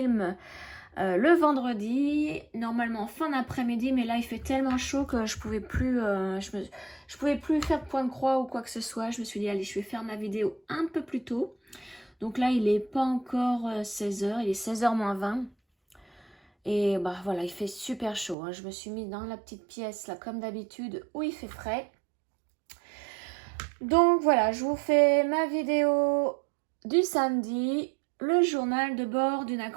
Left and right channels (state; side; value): drops out; left; at 18.4 s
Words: le vendredi, normalement fin d'après-midi, mais là il fait tellement chaud que je pouvais plus, je pouvais plus faire de point de croix ou quoi que ce soit. Je me suis dit allez, je vais faire ma vidéo un peu plus tôt. Donc là il est pas encore 16h, il est 16h moins 20. Et bah voilà, il fait super chaud. Je me suis mis dans la petite pièce là comme d'habitude où il fait frais. Donc voilà, je vous fais ma vidéo du samedi, le journal de bord d'une